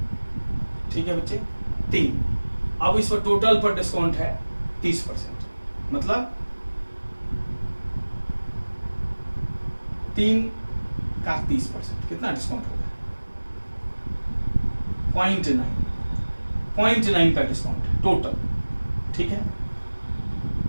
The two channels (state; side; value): inverted; both; correlation -1.00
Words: ठीक है बच्चे, 3। अब इस पर टोटल पर डिस्काउंट है 30%, मतलब 3 का 30%, कितना डिस्काउंट हो गया? 0.9 का डिस्काउंट है टोटल, ठीक है।